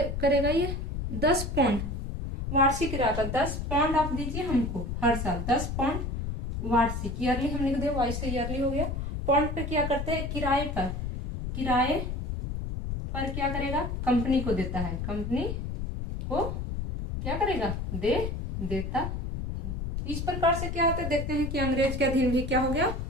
करेगा ये, 10 पाउंड वार्षिक रहता, 10 पाउंड आप दीजिए हमको हर साल, 10 पाउंड वार्षिक, ईयरली हम लिख दे, वाइस से ईयरली हो गया। पाउंड पे क्या करते हैं, किराए पर क्या करेगा, कंपनी को देता है, कंपनी को क्या करेगा, देता है। इस प्रकार से क्या होता है, देखते हैं कि अंग्रेज के अधीन भी क्या हो गया,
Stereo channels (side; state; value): left; noise; rumble, 4 dB below the sound